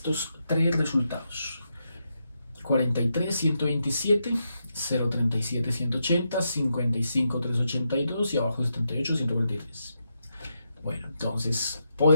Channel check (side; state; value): both; inverted; correlation -0.83